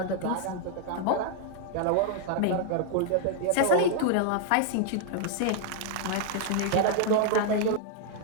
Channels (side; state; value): both; different; correlation 0.00